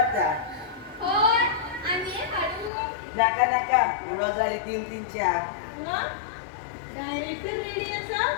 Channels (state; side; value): drops out; right; at 2.7 s